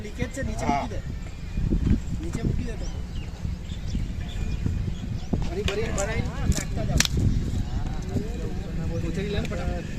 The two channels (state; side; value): identical; both; correlation 1.00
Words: લીકેજ છે નીચે મૂકી દે નીચે મૂકી દે તો આ